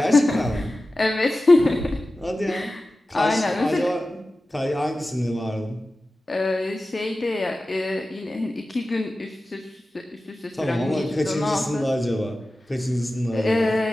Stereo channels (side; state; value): both; normal; correlation 0.95